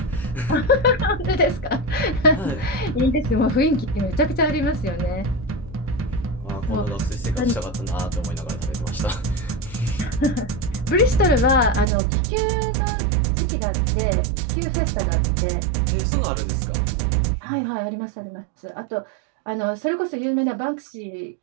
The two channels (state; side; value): drops out; left; at 11.9 s